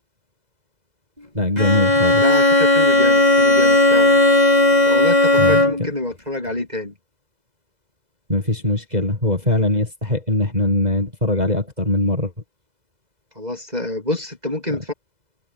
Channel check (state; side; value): late; left; 2.0 ms